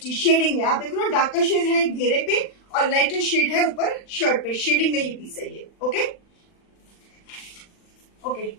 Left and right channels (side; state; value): right; late; 40 ms